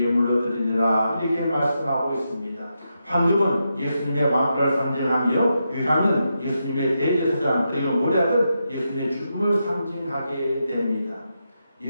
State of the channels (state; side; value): inverted; both; correlation -0.85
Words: 드리느라 이렇게 말씀하고 있습니다. 황금은 예수님의 왕권을 상징하며 유황은 예수님의 대제사장 그리고 모략은 예수님의 죽음을 상징하게 됩니다.